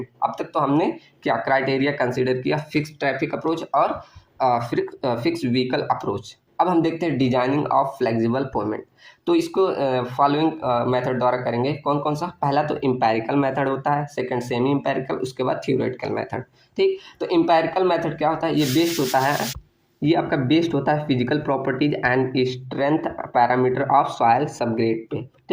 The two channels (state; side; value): identical; both; correlation 1.00